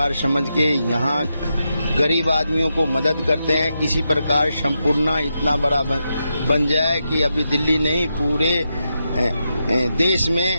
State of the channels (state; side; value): inverted; both; correlation -0.86